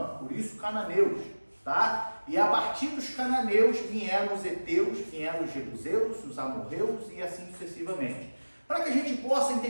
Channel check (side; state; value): both; inverted; correlation -1.00